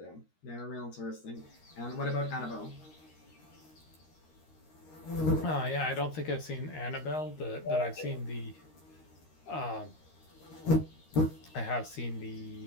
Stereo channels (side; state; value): right; late; 13 ms